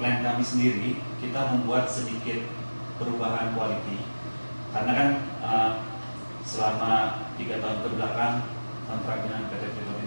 kami sendiri kita membuat sedikit perubahan quality, karena kan selama 3 tahun kebelakang kontrak dengan PT Freeport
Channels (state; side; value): inverted; both; correlation -1.00